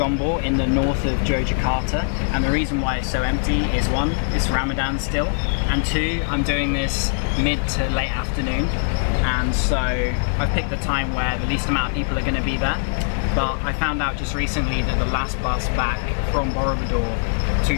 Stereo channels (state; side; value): silent; right; digital silence